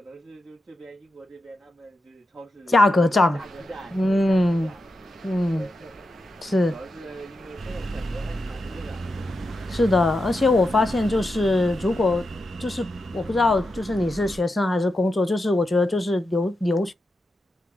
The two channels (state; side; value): normal; both; correlation 0.88